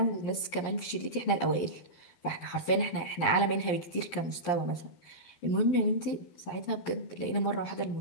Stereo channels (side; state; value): right; late; 12 ms